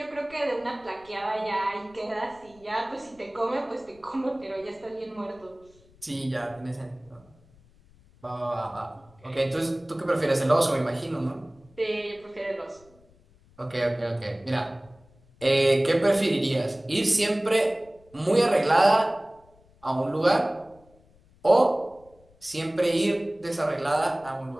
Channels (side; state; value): left; noise; rumble, 29 dB below the sound